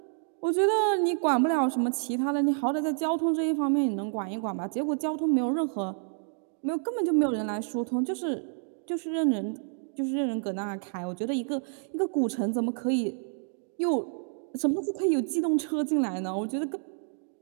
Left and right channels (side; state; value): left; silent; 59 dB below the other